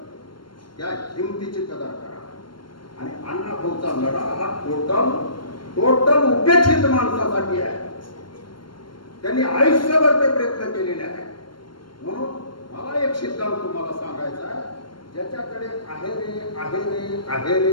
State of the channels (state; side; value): late; right; 0.72 ms